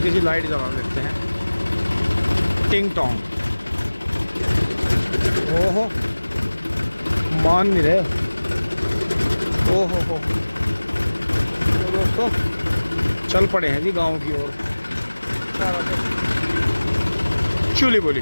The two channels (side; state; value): both; inverted; correlation -1.00